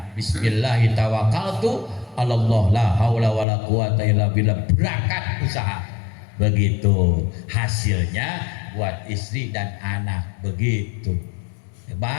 Bismillahi tawakkaltu Allah, la haula wala quwata illa billah. Berangkat usaha. Begitu. Hasilnya buat istri dan anak. Begitu.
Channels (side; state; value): right; drops out; at 3.5 s